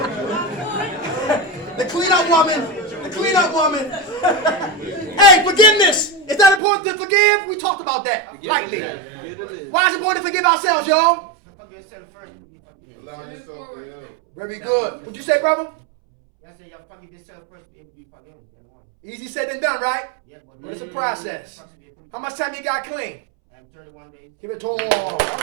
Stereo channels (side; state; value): left; drops out; at 6.6 s